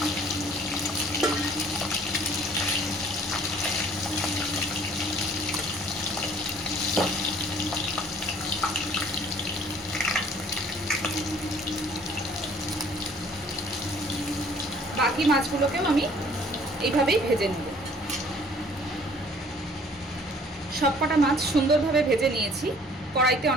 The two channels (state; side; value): normal; both; correlation 0.55